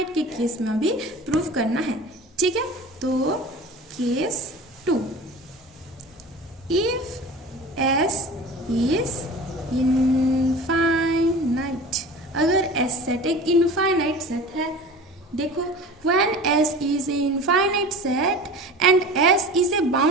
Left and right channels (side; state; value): both; normal; correlation 0.37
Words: के केस में भी प्रूफ करना है, ठीक है। तो case 2, if S is infinite, अगर S सेट एक इनफाइनाइट सेट है, देखो when S is a infinite set and S is a